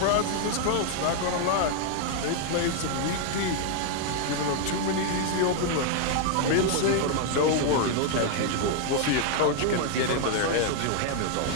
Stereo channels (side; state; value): both; different; correlation 0.00